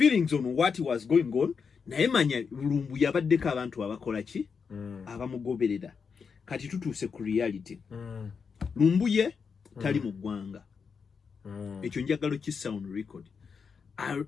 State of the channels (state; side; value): quieter; right; 5.8 dB